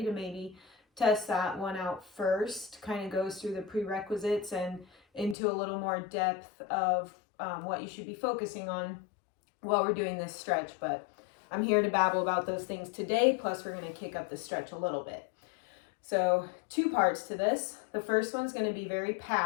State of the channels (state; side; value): drops out; right; at 5.4 s